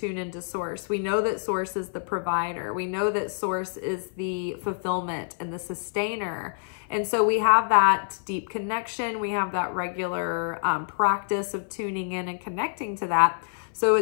into source. We know that source is the provider. We know that source is the fulfillment and the sustainer. And so we have that deep connection. We have that regular practice of tuning in and connecting to that. So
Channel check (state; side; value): silent; right; 56 dB below the other